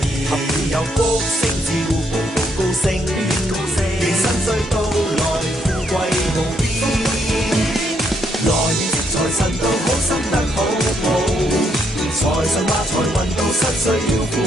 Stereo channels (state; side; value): normal; both; correlation 0.74